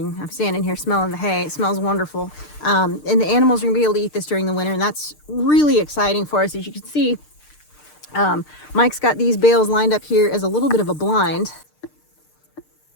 I'm standing here smelling the hay. It smells wonderful. And the animals are gonna be able to eat this during the winter, and that's really exciting for us. As you can see, Mike's got these bales lined up here as a little bit of a blind.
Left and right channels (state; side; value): late; right; 6.6 ms